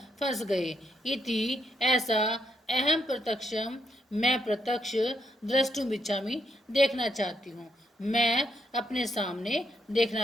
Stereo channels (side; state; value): both; normal; correlation 0.76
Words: फंस गए। इति ऐसा, अहम प्रत्यक्षम, मैं प्रत्यक्ष, द्रष्टुम इच्छामि, देखना चाहती हूँ, मैं अपने सामने